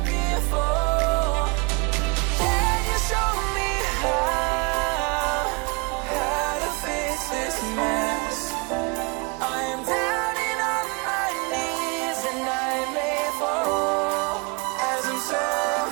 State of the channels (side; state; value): left; quieter; 30.5 dB